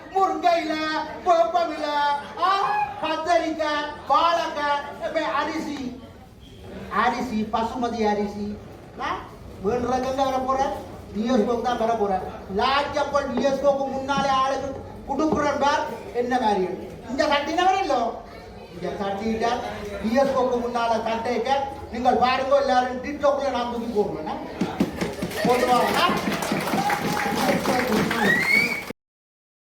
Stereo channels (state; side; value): identical; both; correlation 1.00